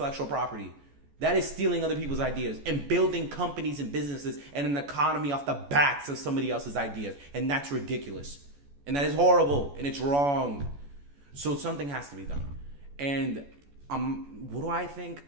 property. That is stealing other people's ideas and building companies and businesses and an economy off the backs of somebody else's ideas. And that's ridiculous. And that is horrible. And it's wrong. So something has to be done. And what do I think?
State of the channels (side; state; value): left; late; 14 ms